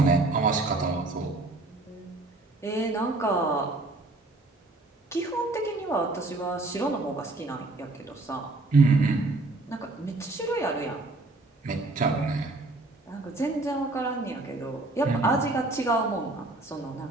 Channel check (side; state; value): left; quieter; 3.0 dB